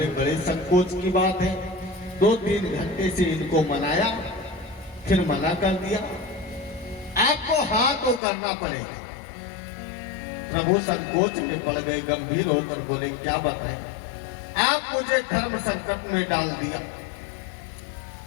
बड़े संकोच की बात है, 2-3 घंटे से इनको मनाया फिर मना कर दिया, आपको हाँ तो करना पड़ेगा। प्रभु संकोच में पड़ गए, गंभीर होकर बोले क्या बताएं, आप मुझे धर्म संकट में डाल दिया।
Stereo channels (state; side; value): drops out; right; at 8.2 s